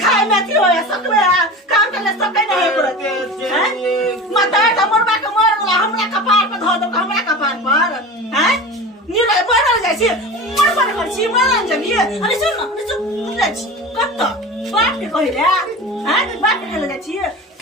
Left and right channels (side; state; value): both; normal; correlation 0.32